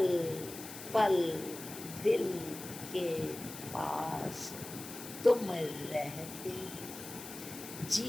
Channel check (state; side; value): noise; left; hiss, 12 dB below the sound